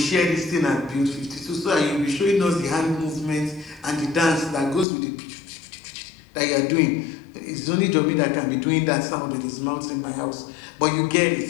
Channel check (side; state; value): right; drops out; at 4.9 s